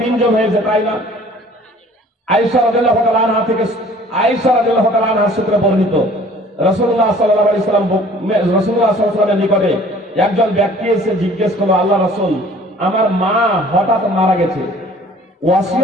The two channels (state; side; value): normal; both; correlation 0.52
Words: জন হয়েছে, তাই না? আয়েশা রাদিয়াল্লাহু তাআলা আনহা থেকে, আয়েশা রাদিয়াল্লাহু তাআলা আনহা সূত্রে বর্ণিত, রাসূলুল্লাহ সাল্লাল্লাহু আলাইহি সাল্লাম, রাসূলুল্লাহ সাল্লাল্লাহু আলাইহি সাল্লামের নিকটে একজন ব্যক্তি এসে জিজ্ঞেস করলো, আল্লাহ রাসূল, আমার মা হঠাৎ মারা গেছে,